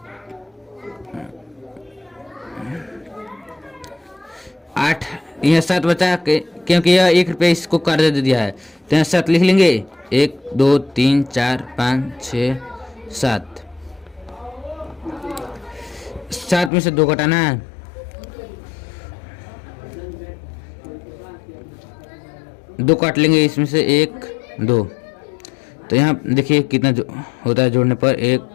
8, यहाँ 7 बचा क्योंकि यह 1 रुपया इसको कर्ज दे दिया है तो यहाँ 7 लिख लेंगे। 1 2 3 4 5 6 7 में से 2 घटाना है। 2 काट लेंगे, इसमें से 1 2, तो यहाँ देखिए कितना होता है जोड़ने पर। 1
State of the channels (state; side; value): drops out; right; at 16.7 s